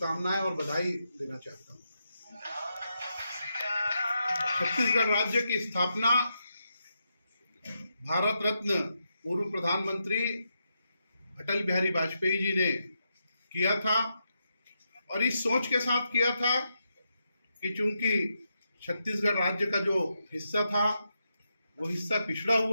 और बधाई देना चाहता हूं। छत्तीसगढ़ राज्य की स्थापना भारत रत्न पूर्व प्रधानमंत्री अटल बिहारी वाजपेयी जी ने किया था और इस सोच के साथ किया था कि चूंकि छत्तीसगढ़ राज्य का जो हिस्सा था वो हिस्सा पिछड़ा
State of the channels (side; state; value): both; inverted; correlation -0.84